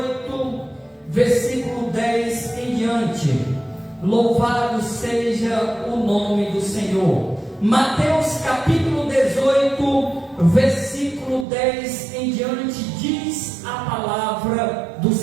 versículo 10 em diante. Louvado seja o nome do Senhor. Mateus capítulo 18, versículo 10 em diante, diz a palavra do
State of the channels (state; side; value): drops out; left; at 11.5 s